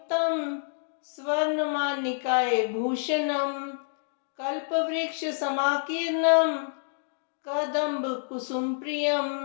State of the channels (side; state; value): right; silent; digital silence